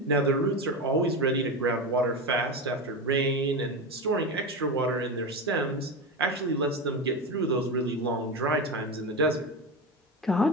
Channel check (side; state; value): both; normal; correlation 0.19